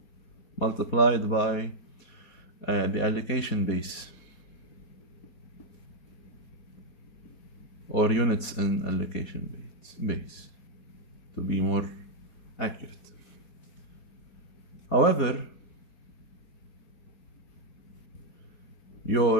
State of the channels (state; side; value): late; right; 4.2 ms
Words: multiplied by the allocation base, or units in allocation base, to be more accurate. However,